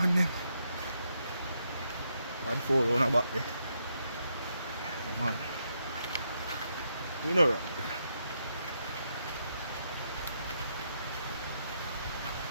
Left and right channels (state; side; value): inverted; both; correlation -0.79